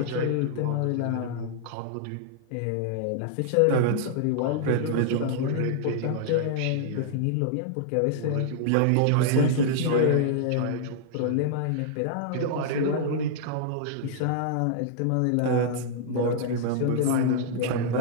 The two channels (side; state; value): both; different; correlation -0.01